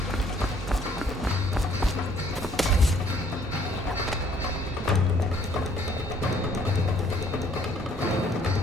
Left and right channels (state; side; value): normal; both; correlation 0.62